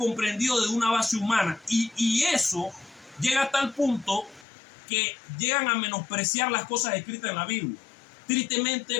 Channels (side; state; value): right; drops out; at 4.5 s